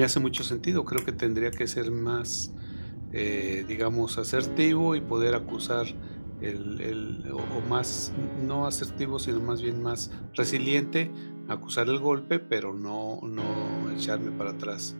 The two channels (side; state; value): both; inverted; correlation -1.00